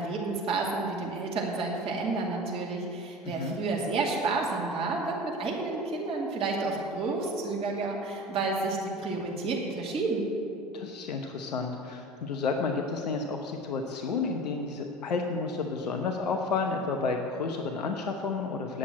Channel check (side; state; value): both; normal; correlation 0.35